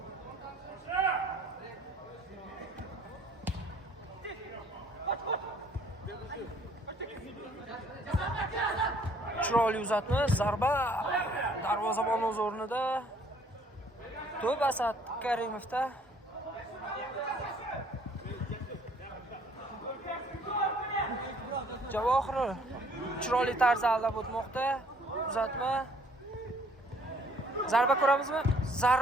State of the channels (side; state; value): both; normal; correlation 0.60